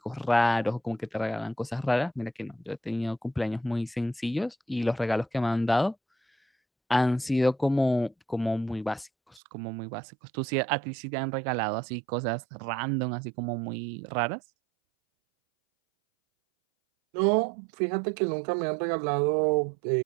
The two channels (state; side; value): drops out; left; at 9.4 s